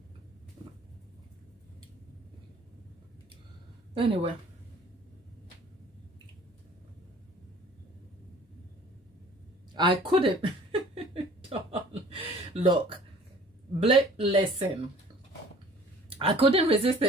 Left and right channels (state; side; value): normal; both; correlation 0.50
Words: Anyway. I couldn't. Look. Listen. I couldn't resist